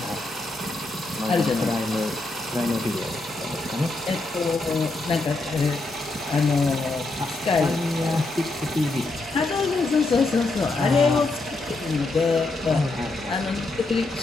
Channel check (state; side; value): quieter; right; 3.1 dB